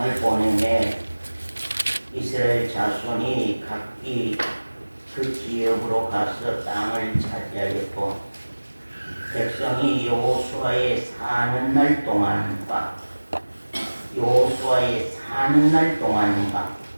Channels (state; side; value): inverted; both; correlation -1.00